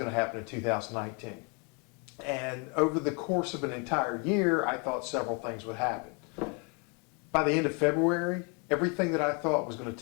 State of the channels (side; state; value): right; quieter; 34.6 dB